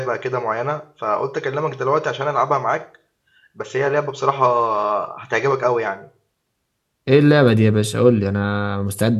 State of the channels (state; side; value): identical; both; correlation 1.00